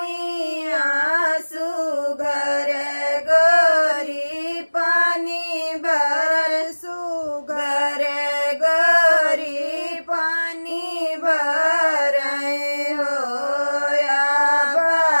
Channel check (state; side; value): inverted; both; correlation -1.00